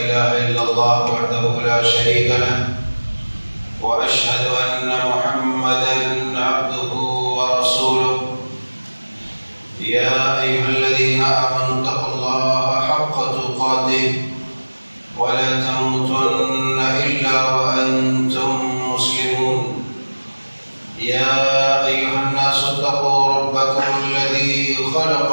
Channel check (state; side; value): inverted; both; correlation -1.00